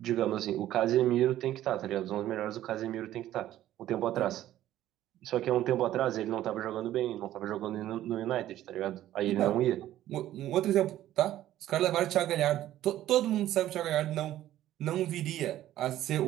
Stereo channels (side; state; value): left; quieter; 13.3 dB